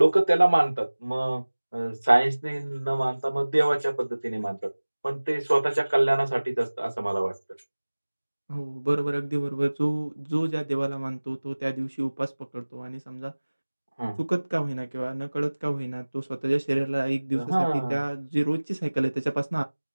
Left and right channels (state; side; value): inverted; both; correlation -1.00